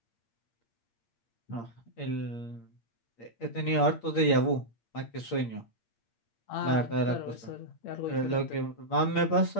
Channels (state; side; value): late; right; 8.6 ms